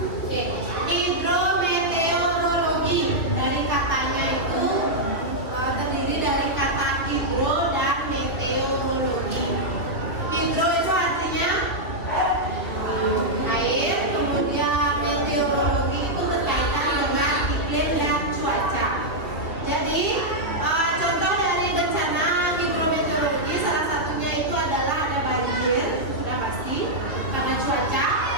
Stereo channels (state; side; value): late; right; 3.0 ms